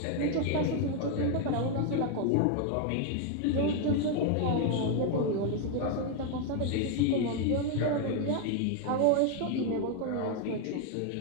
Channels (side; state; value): both; different; correlation 0.01